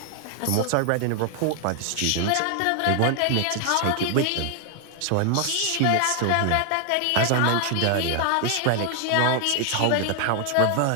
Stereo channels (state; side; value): different; both; correlation 0.00